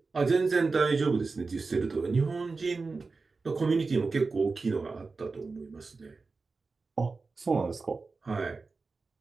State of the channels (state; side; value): quieter; left; 4.1 dB